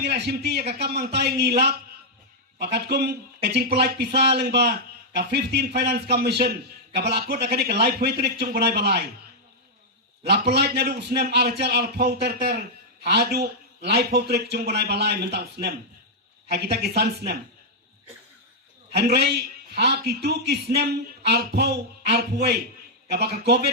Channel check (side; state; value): both; normal; correlation -0.05